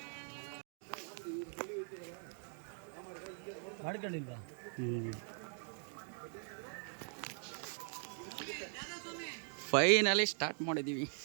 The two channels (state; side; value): silent; left; 50 dB below the other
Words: ಮಾಡ್ಕೊಳ್ಳಿಲ್ವಾ? ಫೈನಲಿ ಸ್ಟಾರ್ಟ್ ಮಾಡಿದ್ದೀವಿ.